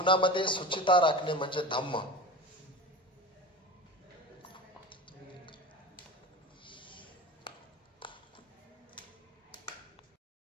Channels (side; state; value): both; normal; correlation 0.31